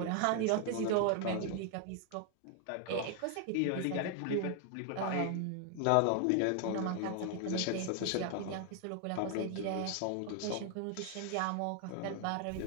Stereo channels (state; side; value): different; both; correlation 0.00